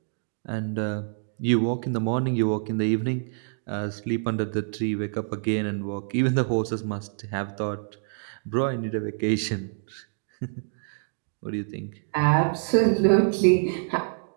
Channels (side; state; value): left; silent; digital silence